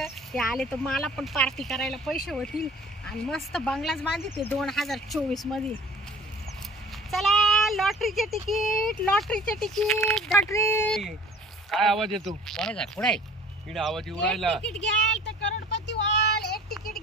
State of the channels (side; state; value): both; normal; correlation 0.48